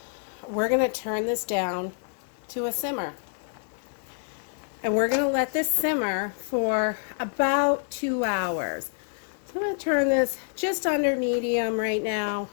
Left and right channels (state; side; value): silent; right; digital silence